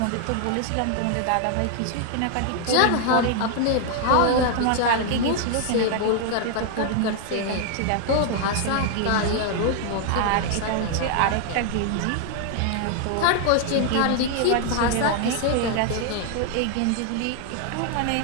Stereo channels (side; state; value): both; different; correlation 0.00